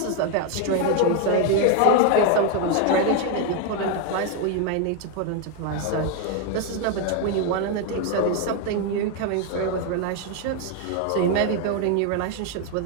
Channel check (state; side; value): different; both; correlation 0.01